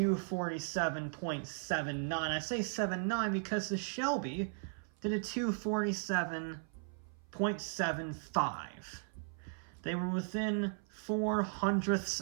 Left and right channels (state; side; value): silent; left; 53 dB below the other